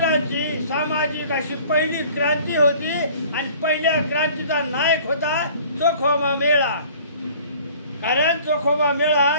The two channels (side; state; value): both; inverted; correlation -0.50